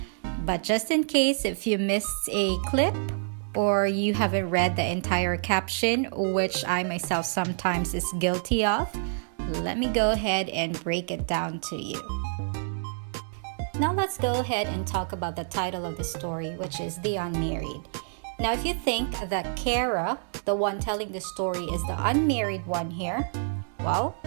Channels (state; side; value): silent; left; 60 dB below the other